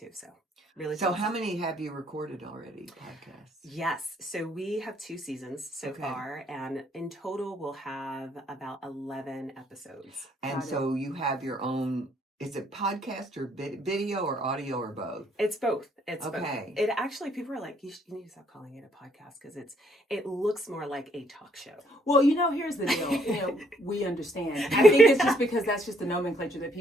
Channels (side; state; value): both; normal; correlation 0.67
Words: So really. So how many have you recorded already? Podcasts? Yes. So we have 2 seasons so far, and in total we'll have about 11 episodes. And so you have your own. Is it podcast or video or audio or both? It's both. It's both. Okay. It actually, people are like, you need to stop calling it a podcast because it looks more like a talk show. Well, here's the deal. We understand. I think it's just because that's just the nomenclature